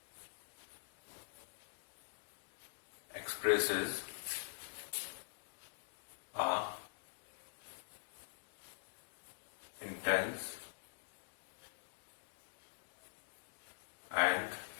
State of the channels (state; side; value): silent; right; digital silence